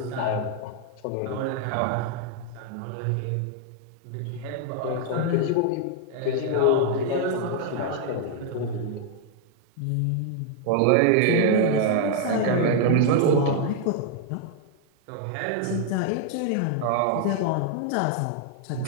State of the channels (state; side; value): different; both; correlation 0.00